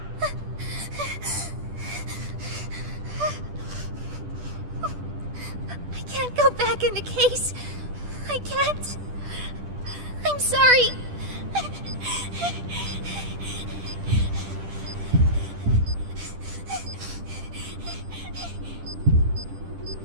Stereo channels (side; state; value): left; late; 10 ms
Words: I can't go back in the case. I can't. I'm sorry.